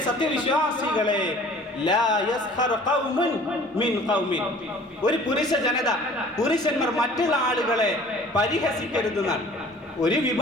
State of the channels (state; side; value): normal; both; correlation 0.49